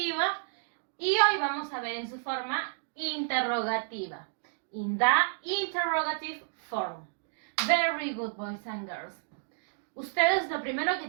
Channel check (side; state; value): left; silent; digital silence